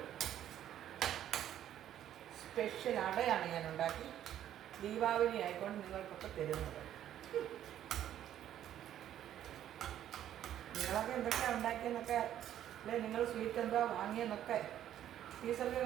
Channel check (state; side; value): quieter; left; 11.3 dB